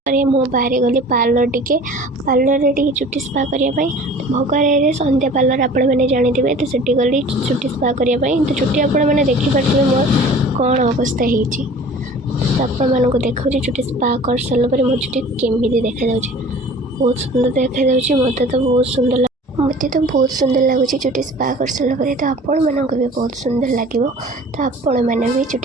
मु बाहर गली पार्लर टिके चुटी स्पा करने भोगर संध्या पार्लर आपण मैंने जानी तो सीटी गली चुटी स्पा करने तो चुटी आपण मैंने देखिपे मोर कौन अवस्था होती तो आपण मानक देखा चुटी स्पा कर सारापर मो चुटी केमी देखा बहुत सुंदर देखा मत तो बहुत सुंदर मत तो बहुत सुंदर लगुच चुटी स्पा कर सारापर तो आपण मानक भी बहुत सुंदर लगे तो आपण मैंने भी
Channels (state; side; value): normal; both; correlation 0.45